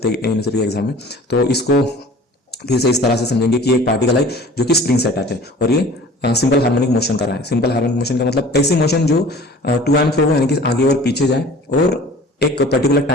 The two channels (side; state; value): both; normal; correlation 0.45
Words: हैं यूनिवर्सिटी एग्जाम में। तो इसको फिर से इस तरह से समझेंगे कि एक पार्टिकल है जो कि स्प्रिंग से अटैच है और ये सिंपल हार्मोनिक मोशन कर रहा है। सिंपल हार्मोनिक मोशन का मतलब ऐसी मोशन जो टू एंड फ्रो हो, यानी कि आगे और पीछे जाए और एक पर्टिकुलर